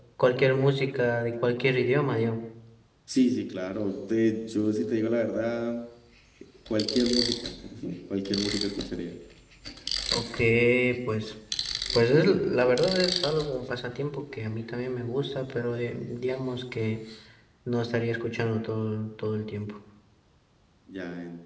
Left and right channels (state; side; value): identical; both; correlation 1.00